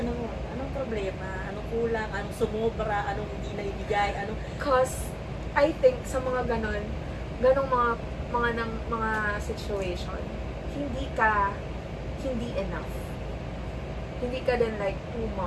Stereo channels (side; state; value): both; identical; correlation 1.00